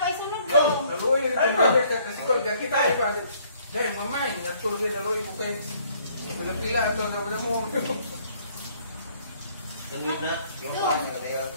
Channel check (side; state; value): both; inverted; correlation -0.62